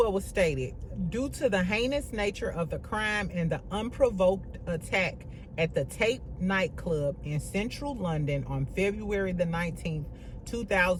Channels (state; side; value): identical; both; correlation 1.00